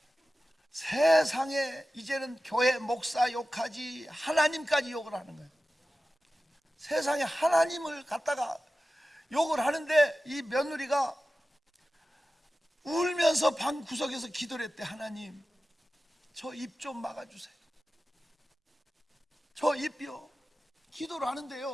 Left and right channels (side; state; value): both; normal; correlation 0.94